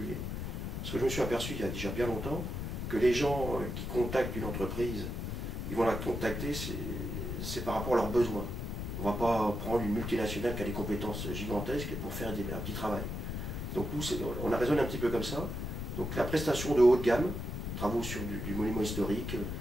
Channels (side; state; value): left; noise; rumble, 4 dB below the sound